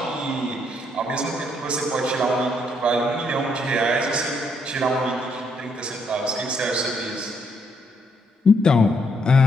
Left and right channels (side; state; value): both; normal; correlation 0.73